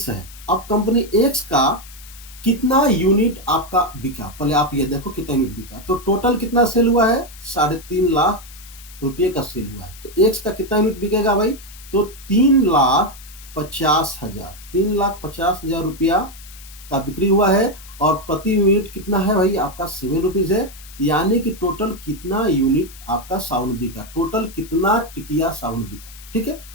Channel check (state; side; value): noise; left; hiss, 19 dB below the sound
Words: है, अब कंपनी एक्स का कितना यूनिट आपका बिका, पहले आप ये देखो कितना यूनिट बिका। तो टोटल कितना सेल हुआ है 3.5 लाख रुपये का सेल हुआ है। तो एक्स का कितना यूनिट बिकेगा भाई, तो 3,50,000, 3,50,000 रुपया का बिक्री हुआ है और प्रति यूनिट कितना है भाई आपका 7 रुपीज है। यानी कि टोटल कितना यूनिट आपका साबुन बिका, टोटल कितना टिकिया साबुन बिका। ठीक है,